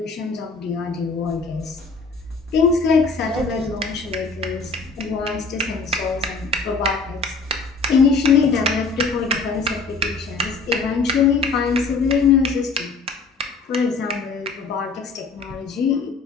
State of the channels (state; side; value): quieter; right; 4.2 dB